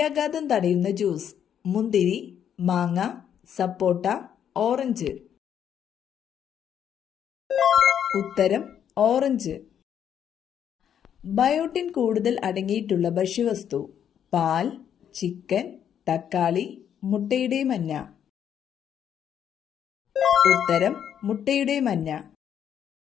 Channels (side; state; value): right; quieter; 9.0 dB